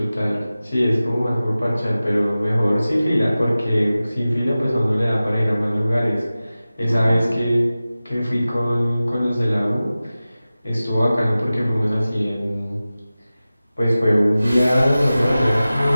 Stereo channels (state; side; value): inverted; both; correlation -0.96